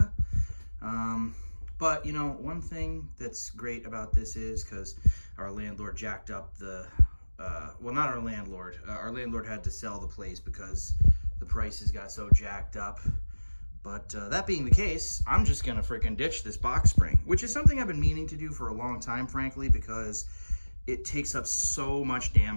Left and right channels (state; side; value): inverted; both; correlation -1.00